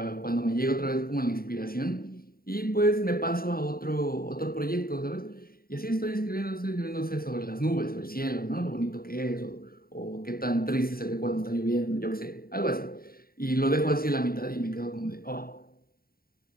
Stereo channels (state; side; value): late; right; 0.43 ms